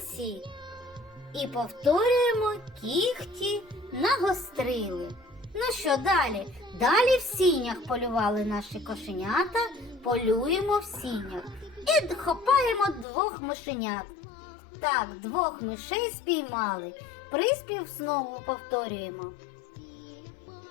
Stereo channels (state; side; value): drops out; right; at 13.1 s